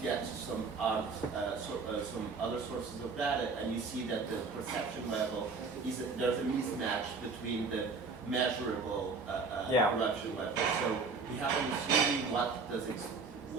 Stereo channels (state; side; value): quieter; left; 4.4 dB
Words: get some other sources of data, and you see that the perception level there's a mismatch between the measurable corruption level. So we happen to see